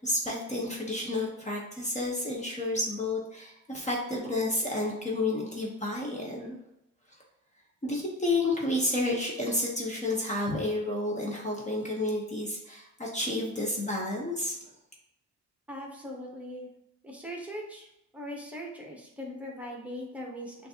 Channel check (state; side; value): normal; both; correlation 0.28